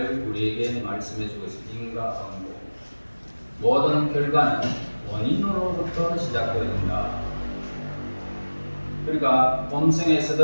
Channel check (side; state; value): both; inverted; correlation -1.00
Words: 우리에게 말씀해 주고 있습니다. 인과응보. 모든 결과는 원인으로부터 시작됩니다. 그러니까